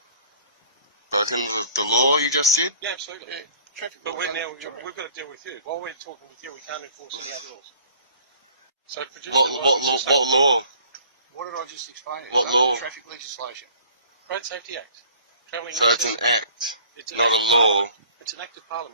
Broken the law, you just said? Yeah, absolutely. Yeah, traffic But laws we've under Victoria. got to deal with you. While we're talking with you, we can't enforce any other laws. So produce What law? What did I just explain? What Under law? the traffic legislation. Road Safety Act. Travelling So it's an act, It's an not a act of law. Parliament. It's an act of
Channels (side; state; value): both; inverted; correlation -0.52